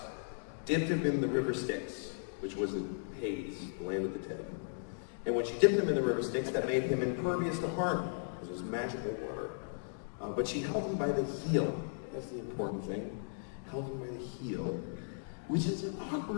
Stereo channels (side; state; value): right; silent; digital silence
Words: dipped him in the river Styx, which was the Hades, the land of the dead. And when she dipped him in the river Styx, that made him impervious to harm, because it was magical water. But she held him by the heel. That's the important thing. Held him by the heel, which is an